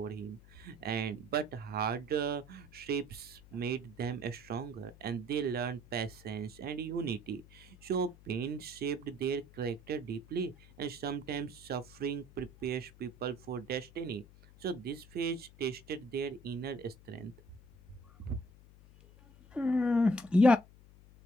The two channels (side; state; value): left; noise; hum, 22 dB below the sound